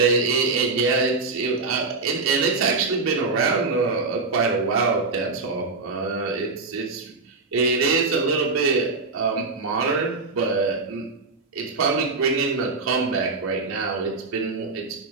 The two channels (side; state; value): left; quieter; 3.9 dB